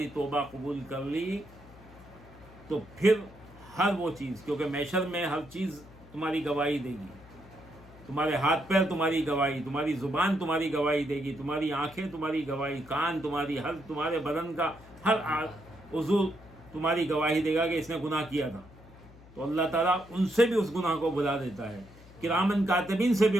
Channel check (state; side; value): noise; left; hum, 22 dB below the sound